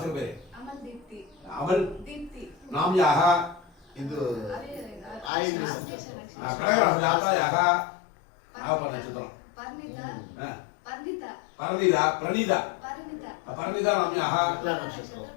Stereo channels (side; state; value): right; drops out; at 5.3 s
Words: पेरे अमल नाम्याः इदु आयिन कनक जातायाः आवपन चित्रम परिणीता नाम्याः